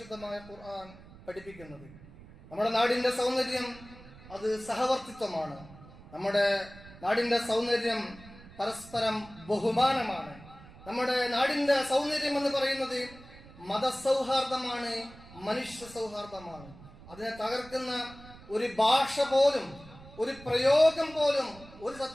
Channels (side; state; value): right; noise; rumble, 20 dB below the sound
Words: ഖുർആൻ പഠിപ്പിക്കുന്നത്. നമ്മുടെ നാടിന്റെ സൗന്ദര്യം അത് സഹവർത്തിത്വമാണ്. നമ്മുടെ നാടിന്റെ സൗന്ദര്യം പരസ്പരം ബഹുമാനമാണ്. നമ്മുടെ നാടിന്റെ സൗന്ദര്യം എന്ന് പറയുന്നത് മതസൗഹാർദ്ദമാണ്, മനുഷ്യ സൗഹാർദ്ദമാണ്. അതിനെ തകർക്കുന്ന ഒരു ഭാഷ പോലും, ഒരു പ്രയോഗം പോലും ഒരു